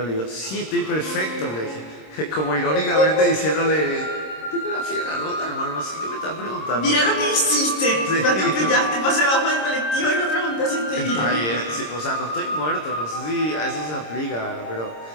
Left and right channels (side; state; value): right; late; 26 ms